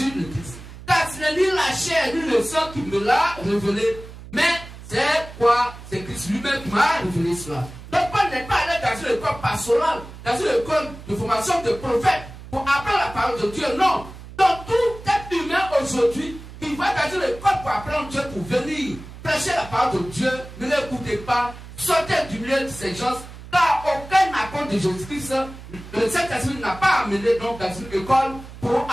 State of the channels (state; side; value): noise; right; hum, 15 dB below the sound